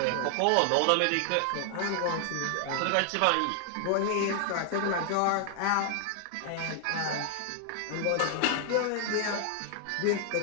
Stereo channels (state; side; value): different; both; correlation 0.00